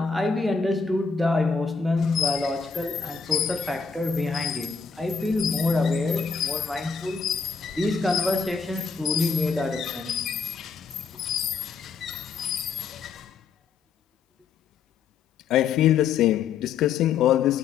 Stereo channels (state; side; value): quieter; right; 5.5 dB